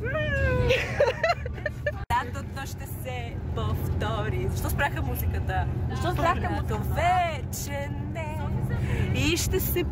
Лятото ще се повтори. Защо спряха музиката? Защо спряха музиката? Вече не. И ще се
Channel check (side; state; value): both; identical; correlation 1.00